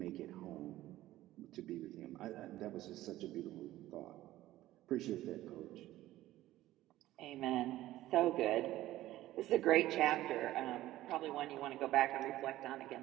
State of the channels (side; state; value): left; quieter; 15.3 dB